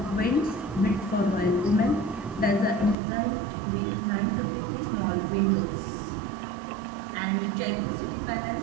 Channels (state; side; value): drops out; left; at 3.0 s